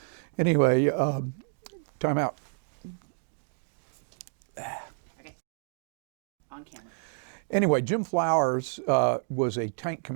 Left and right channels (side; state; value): left; silent; 58 dB below the other